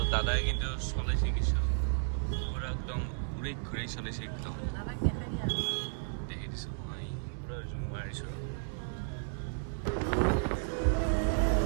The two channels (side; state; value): left; silent; digital silence